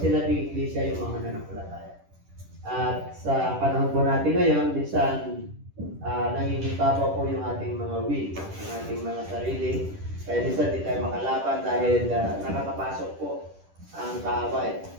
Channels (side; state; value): left; late; 10 ms